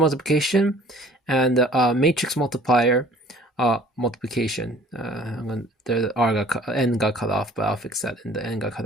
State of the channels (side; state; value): both; normal; correlation 0.53